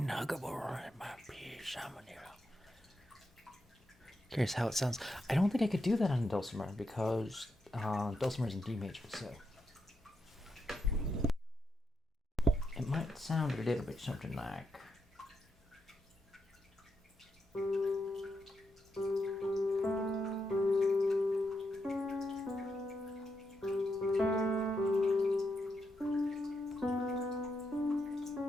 huggable and my peace. Curious how it sounds. I don't think I could do that on dulcimer because dulcimer is in D major, so it might sound a little bit something like.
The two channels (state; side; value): normal; both; correlation 0.83